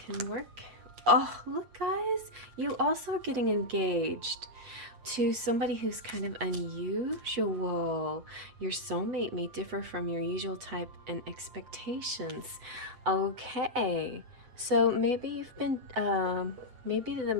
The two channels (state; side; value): late; left; 8.2 ms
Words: work. Oh, look guys, you also are getting engaged to somebody who's kind of unusual. Your soulmate may differ from your usual type and expectations. Okay. So maybe you've been, maybe the